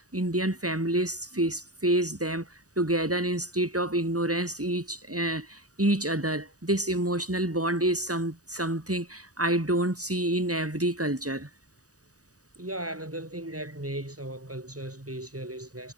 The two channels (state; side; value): late; left; 0.66 ms